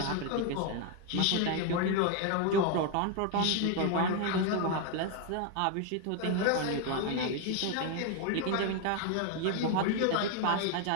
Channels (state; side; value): different; both; correlation 0.01